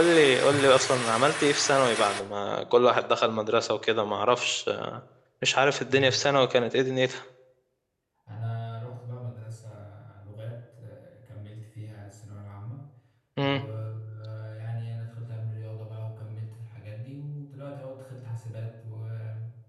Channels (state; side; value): identical; both; correlation 1.00